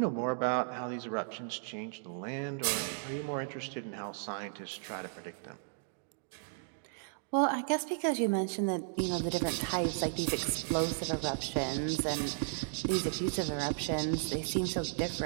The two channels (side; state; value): left; silent; digital silence